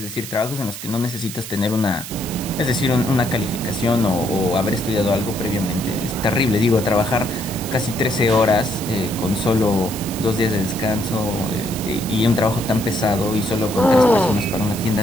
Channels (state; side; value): noise; right; hiss, 10 dB below the sound